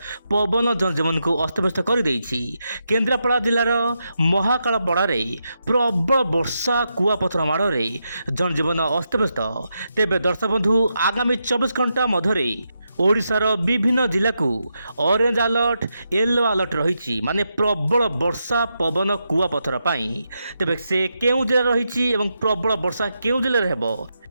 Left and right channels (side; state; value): both; inverted; correlation -0.85